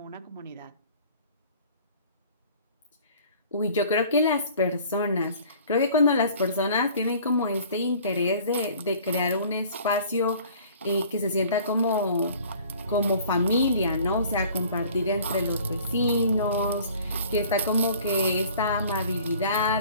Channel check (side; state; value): both; inverted; correlation -0.50